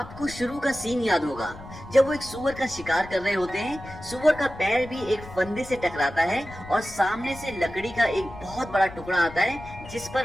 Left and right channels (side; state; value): left; noise; rumble, 16 dB below the sound